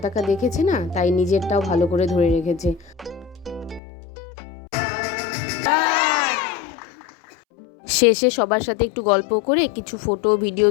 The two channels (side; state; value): right; drops out; at 3.8 s